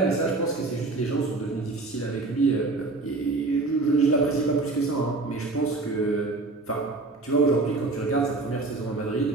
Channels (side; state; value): left; quieter; 3.4 dB